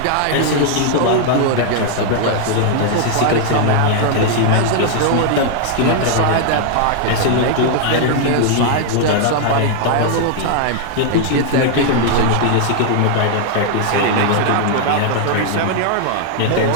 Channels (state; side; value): different; both; correlation 0.00